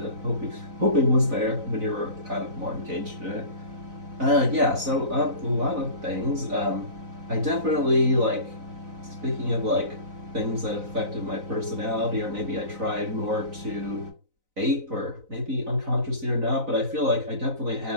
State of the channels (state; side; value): late; left; 4.0 ms